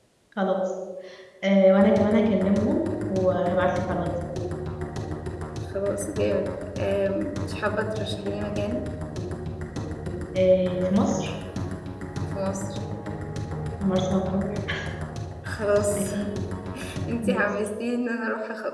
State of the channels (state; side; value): identical; both; correlation 1.00